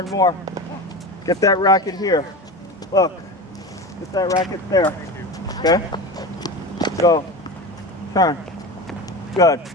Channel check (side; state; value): both; normal; correlation 0.27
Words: more. Get that racket here. Look. Get that racket there. Okay? Go. Turn. Good.